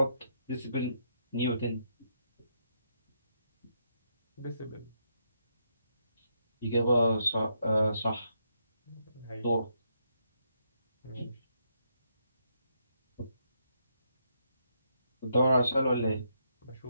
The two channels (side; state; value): both; inverted; correlation -0.77